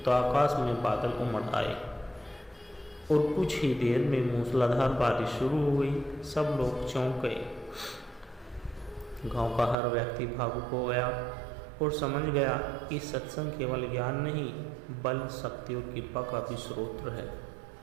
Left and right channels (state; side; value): drops out; left; at 9.8 s